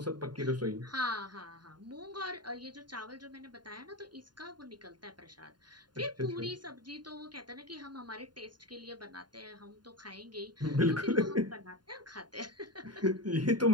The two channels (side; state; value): left; late; 0.70 ms